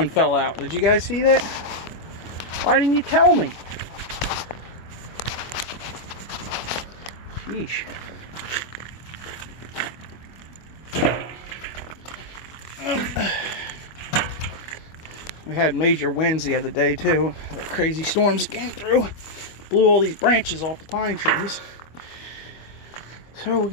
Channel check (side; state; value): right; late; 25 ms